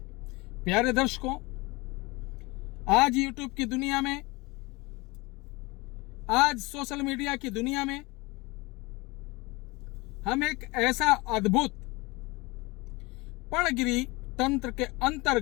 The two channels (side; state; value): right; quieter; 24.1 dB